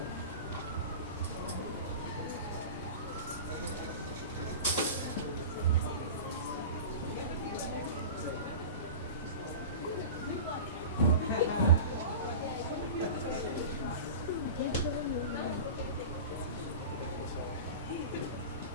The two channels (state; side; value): inverted; both; correlation -0.32